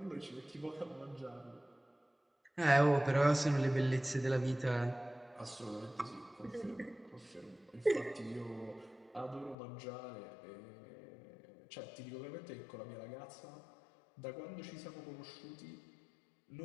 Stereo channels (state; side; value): drops out; right; at 9.6 s